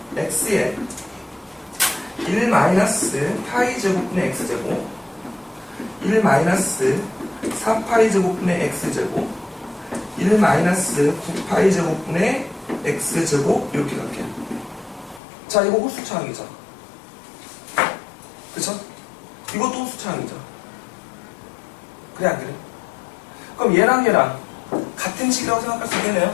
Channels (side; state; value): right; drops out; at 15.2 s